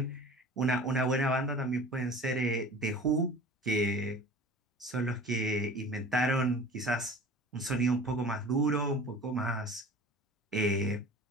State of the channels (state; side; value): normal; both; correlation 0.41